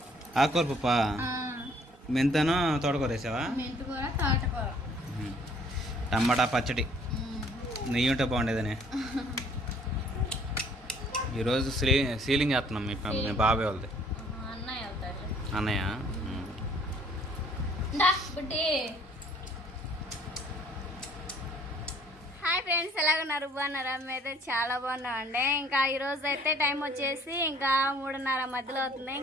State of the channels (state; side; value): normal; both; correlation 0.58